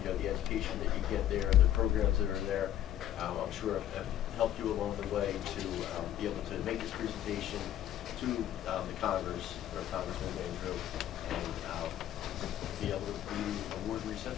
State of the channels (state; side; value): quieter; right; 11.8 dB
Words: The education that you get there, the programs that are there, I'm sure have helped you along the way to be able to make this presentation to the Congress, or Congressman Van Drew, and be able to be award